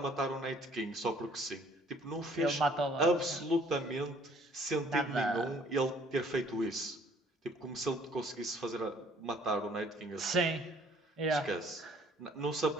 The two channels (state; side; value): normal; both; correlation 0.59